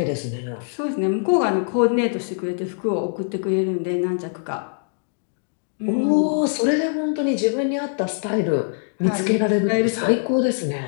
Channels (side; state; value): right; silent; digital silence